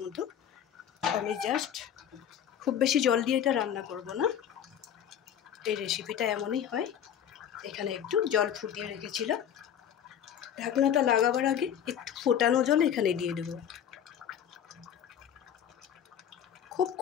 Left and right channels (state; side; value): quieter; right; 9.3 dB